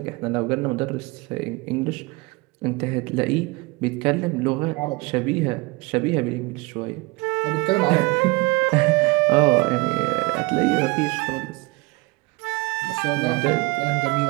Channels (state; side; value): quieter; left; 24.2 dB